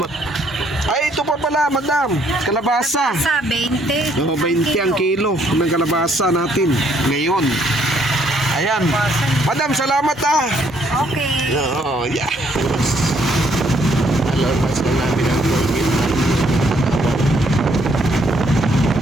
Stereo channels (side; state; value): both; normal; correlation 0.68